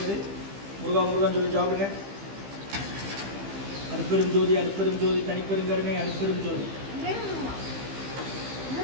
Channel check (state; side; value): late; left; 15 ms